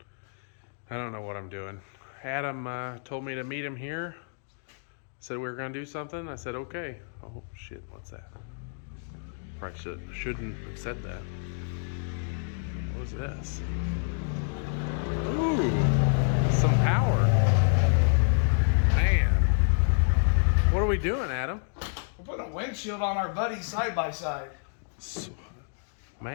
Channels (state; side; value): silent; right; digital silence